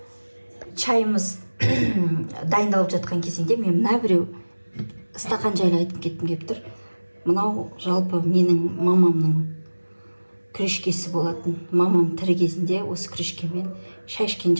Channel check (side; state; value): both; inverted; correlation -1.00